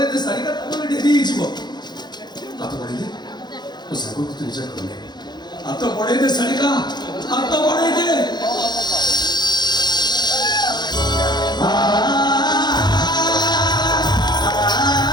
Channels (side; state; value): right; late; 0.21 ms